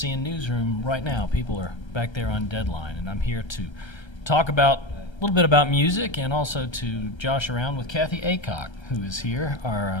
newsroom right now. People are back there on deadline, and I'm here to talk about a little bit about music and also to josh around with Kathy Aycock, who is here, our,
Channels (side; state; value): right; late; 1.3 ms